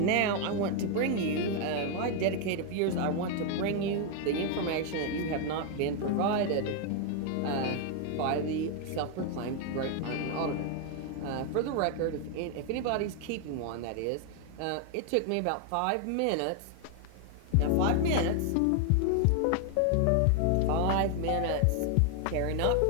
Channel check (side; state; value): both; different; correlation 0.00